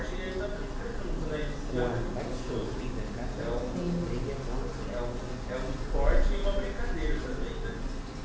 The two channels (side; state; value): both; identical; correlation 1.00